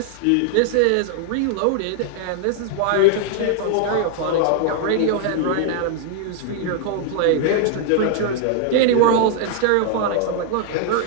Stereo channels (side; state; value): both; different; correlation 0.00